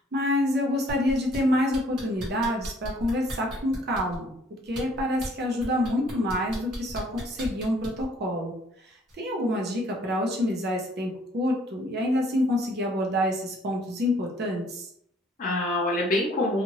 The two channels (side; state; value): both; normal; correlation 0.60